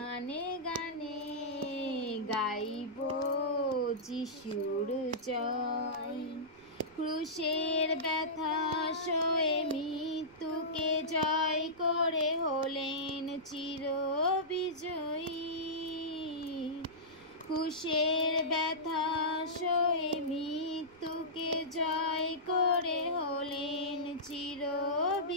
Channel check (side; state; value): right; noise; rumble, 28 dB below the sound